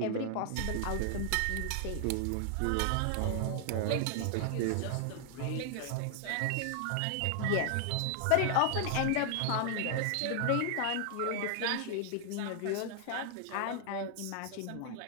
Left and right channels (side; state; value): both; different; correlation 0.00